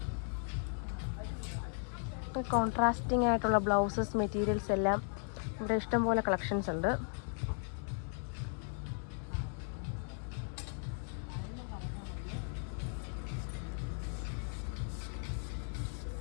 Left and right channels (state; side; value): silent; right; 53 dB below the other